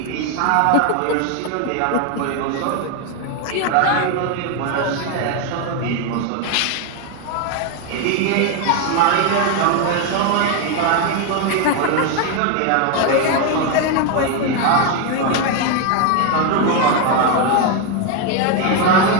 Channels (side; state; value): both; different; correlation 0.01